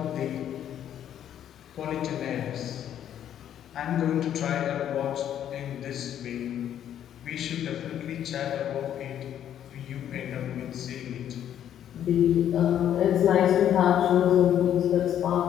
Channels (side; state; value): right; quieter; 10.3 dB